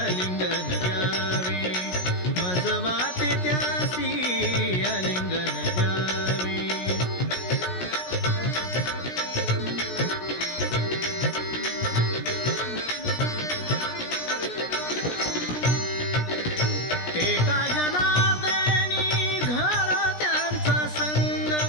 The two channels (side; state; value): right; late; 17 ms